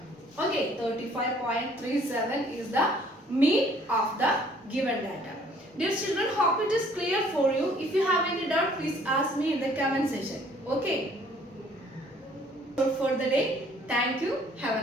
Okay, 35.37 is the mean of the given data. Dear children, hope it is clear for you. If you have any doubt, please ask me in the comment section. Okay. For the day, thank you.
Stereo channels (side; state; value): both; normal; correlation 0.58